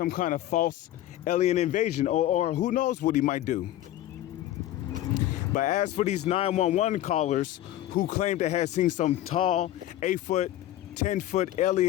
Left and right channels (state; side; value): quieter; right; 13.5 dB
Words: kind of false alien invasion, or who knows what he might do. But as for these 911 callers who claim to have seen some tall 8-foot, 10-foot